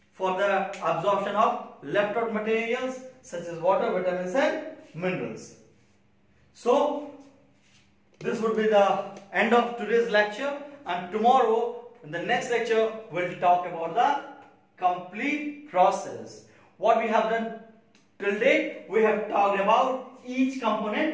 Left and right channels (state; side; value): identical; both; correlation 1.00